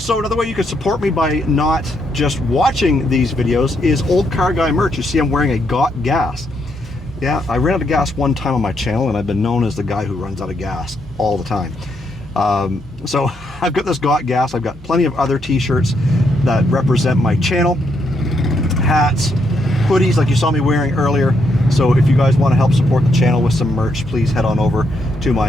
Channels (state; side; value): normal; both; correlation 0.77